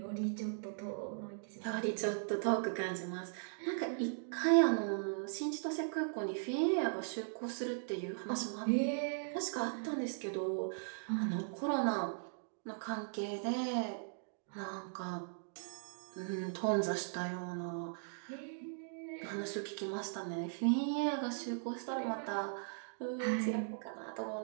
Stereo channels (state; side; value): silent; left; digital silence